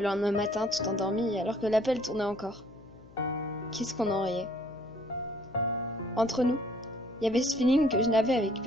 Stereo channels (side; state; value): left; noise; hum, 23 dB below the sound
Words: lendemain matin tout endormi, alors que l'appel tournait encore. Qu'est-ce qu'on en riait. Entre nous, il y avait ce feeling que je n'avais avec